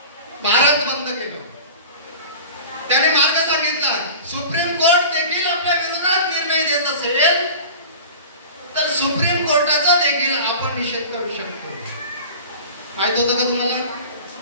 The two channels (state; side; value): inverted; both; correlation -0.37